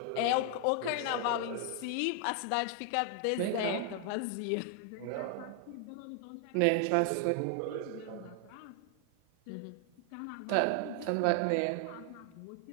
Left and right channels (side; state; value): both; different; correlation 0.00